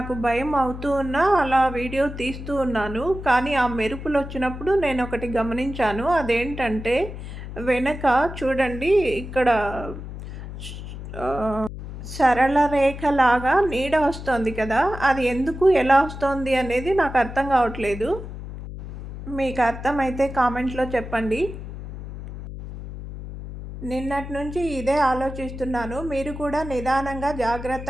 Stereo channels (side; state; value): left; noise; hum, 10 dB below the sound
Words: భయం అవుతూ ఉన్నా అలా వీడియో తీస్తూ ఉన్నాను. కానీ ఆ మెరుపులొచ్చినప్పుడు నేనొకటి గమనించాను. అదేంటంటే వెనక చూడండి, ఇక్కడ సరళ రేఖలాగా నీడ వస్తోంది కదా! అది ఎందుకు, ఎలా వస్తోంది అనేది నాకు అర్థం కావట్లేదు. మీకు అర్థమైతే కామెంట్‌లో చెప్పండి. నిన్నటి నుంచి ఇదే ఆలోచిస్తున్నాను. మీరు కూడా నిదానంగా,